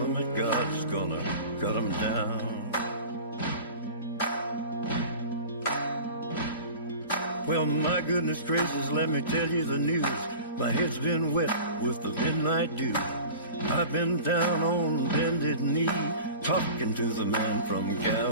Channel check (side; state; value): both; inverted; correlation -0.38